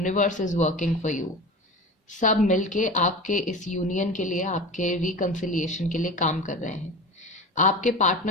is working for you. सब मिलके आपके इस union के लिए, आपके रिकंसिलिएशन के लिए काम कर रहे हैं। आपके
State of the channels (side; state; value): both; normal; correlation 0.31